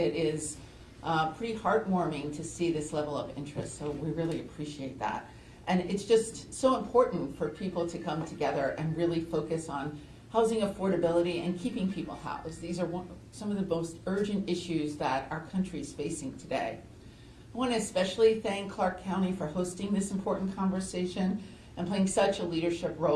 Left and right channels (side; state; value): both; identical; correlation 1.00